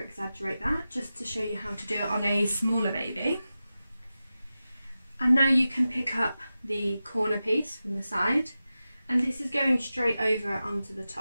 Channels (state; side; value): inverted; both; correlation -0.93